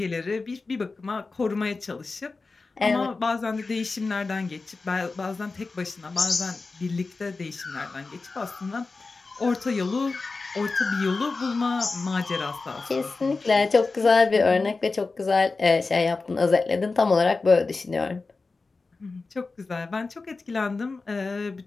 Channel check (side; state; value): right; quieter; 3.9 dB